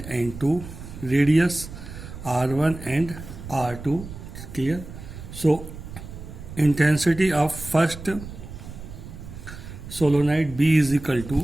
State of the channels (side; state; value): right; noise; rumble, 12 dB below the sound